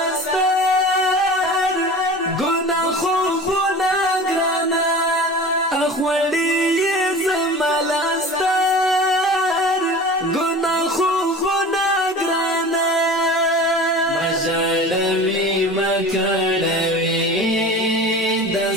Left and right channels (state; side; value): normal; both; correlation 0.37